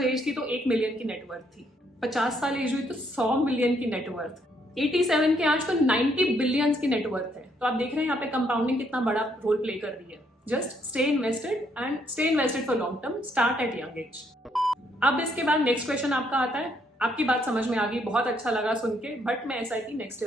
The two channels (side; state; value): both; normal; correlation 0.71